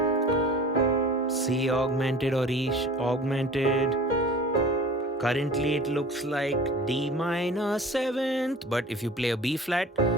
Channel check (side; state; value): both; normal; correlation 0.41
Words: C augmented or E augmented. Currently it looks like D minor 7th, but if you play a B flat